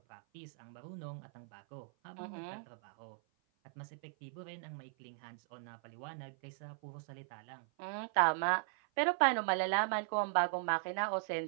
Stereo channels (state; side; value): silent; left; 52 dB below the other